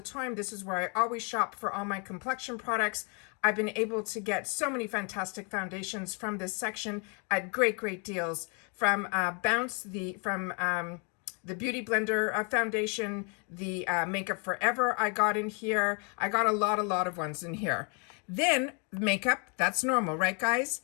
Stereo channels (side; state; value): right; quieter; 36.0 dB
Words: time, this is where I always shop for all my complexion products. I've been able to get so many fantastic foundations from this section at great deals. From Bounce, from the Beauty Blender foundation, the Makeup Forever I got in here. I got a lot of ones in here. Then makeup, that's normal, right, guys?